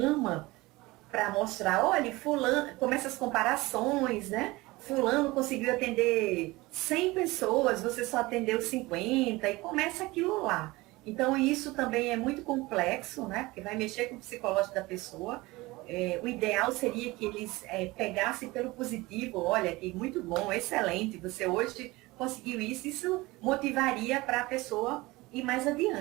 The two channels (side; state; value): left; quieter; 21.2 dB